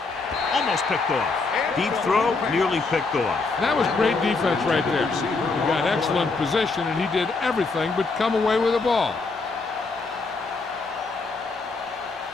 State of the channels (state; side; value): quieter; right; 4.0 dB